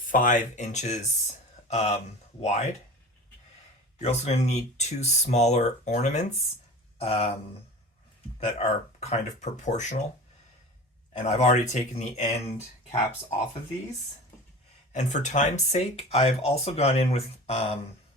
inches wide. You're also going to need 2 smaller ornaments that are kind of proportional. And I've already taken the end caps off of these. And for time's sake, I've also gone in with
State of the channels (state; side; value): normal; both; correlation 0.36